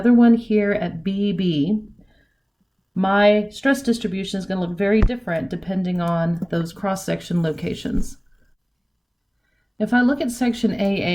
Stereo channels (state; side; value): identical; both; correlation 1.00